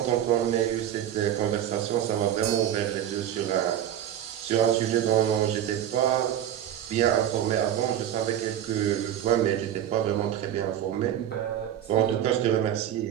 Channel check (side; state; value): left; quieter; 10.9 dB